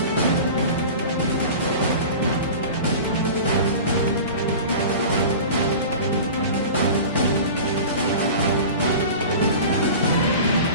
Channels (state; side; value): inverted; both; correlation -0.36